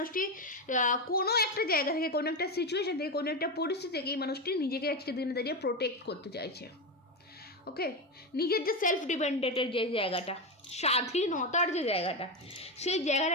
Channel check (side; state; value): both; normal; correlation 0.14